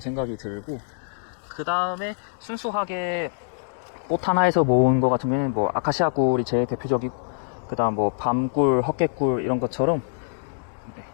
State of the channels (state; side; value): silent; right; digital silence